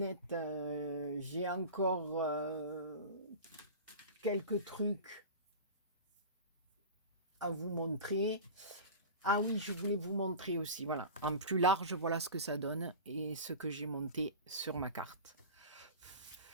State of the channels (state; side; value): inverted; both; correlation -0.32